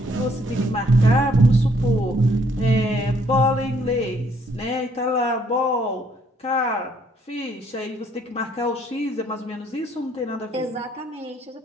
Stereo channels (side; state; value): both; normal; correlation 0.66